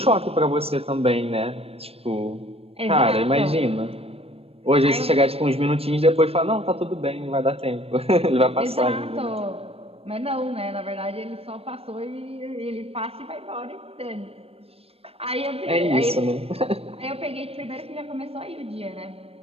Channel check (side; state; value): left; late; 0.28 ms